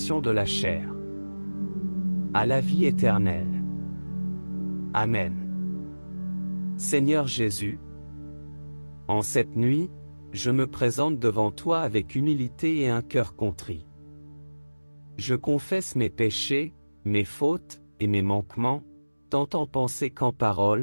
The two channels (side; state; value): both; inverted; correlation -1.00